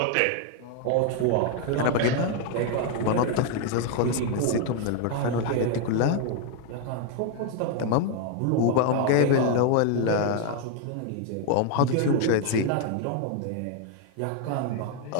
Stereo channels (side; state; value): both; different; correlation 0.00